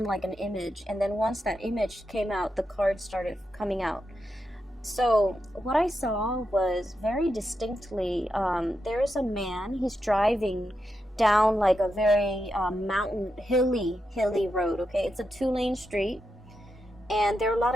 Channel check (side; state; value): both; normal; correlation 0.86